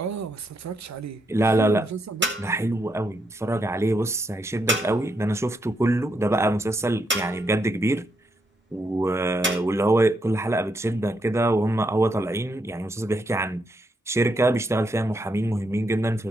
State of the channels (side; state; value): both; normal; correlation 0.79